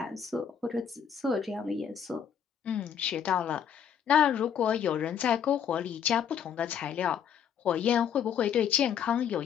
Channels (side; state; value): right; quieter; 8.2 dB